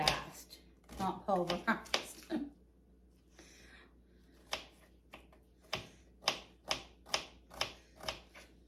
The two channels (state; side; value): identical; both; correlation 1.00